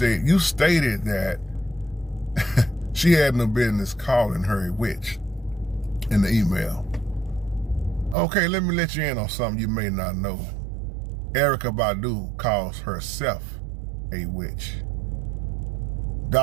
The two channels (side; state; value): left; drops out; at 8.2 s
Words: that she had no business calling her a witch in the email. Okay, let me let you in on something you may not know. Erykah Badu calls herself a witch.